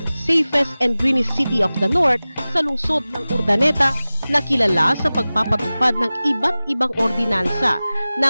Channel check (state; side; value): inverted; both; correlation -0.98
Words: safest and greenest city of the North sa lungsod ng Urdaneta na kilala sa pagpapatupad ng iba't ibang ordinansa